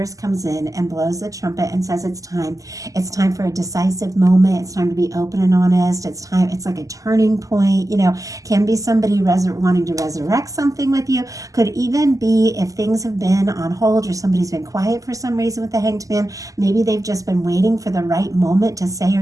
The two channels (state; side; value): late; left; 0.16 ms